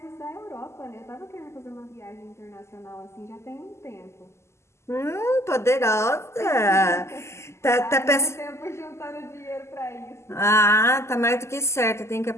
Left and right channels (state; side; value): late; right; 0.13 ms